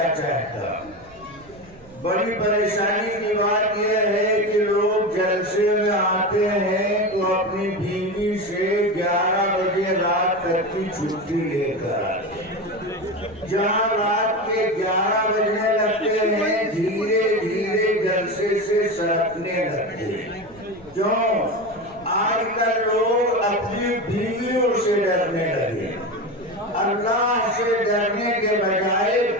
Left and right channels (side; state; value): right; noise; rumble, 24 dB below the sound